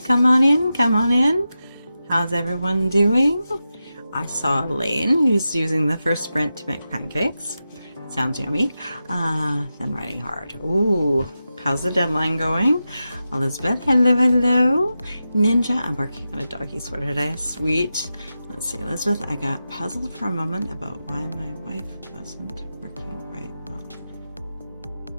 on in. Come on in. How's everyone doing? I saw Elaine, who's using the first sprint to make pancakes. Sounds yummy. Then writing hard. Ooh, how's the deadline going? Elizabeth, hello, hello. Ninja, I'm working on a doggy sweater today. Sweet. Let's see, Elizabeth, I got puzzled for a moment about why my wife wasn't working right well.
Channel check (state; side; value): inverted; both; correlation -0.91